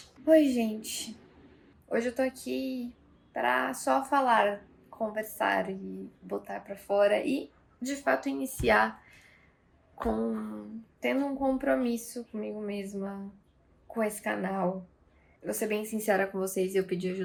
Oi, gente. Hoje eu tô aqui pra só falar, conversar e botar pra fora e, de fato, iniciar com tendo um compromisso comigo mesma, com esse canal. Vou ser bem sincera com vocês, eu pedi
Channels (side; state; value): both; identical; correlation 1.00